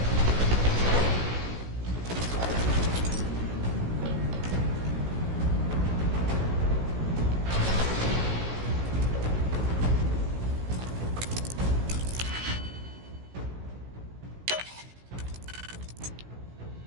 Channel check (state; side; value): late; left; 16 ms